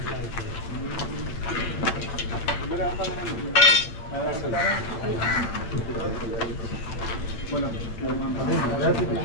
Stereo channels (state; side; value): late; right; 9.1 ms